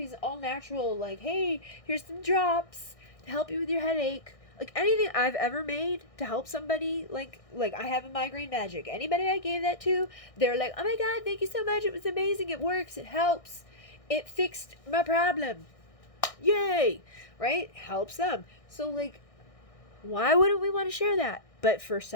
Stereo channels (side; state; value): right; late; 1.6 ms